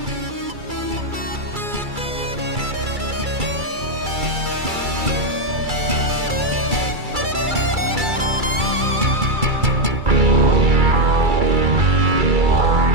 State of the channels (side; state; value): left; late; 2.3 ms